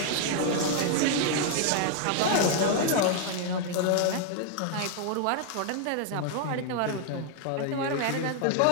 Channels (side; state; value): both; different; correlation 0.00